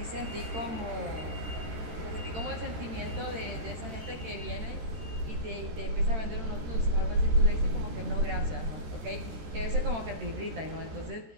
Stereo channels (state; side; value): late; left; 13 ms